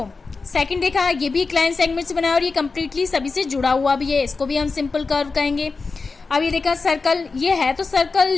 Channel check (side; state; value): right; quieter; 4.3 dB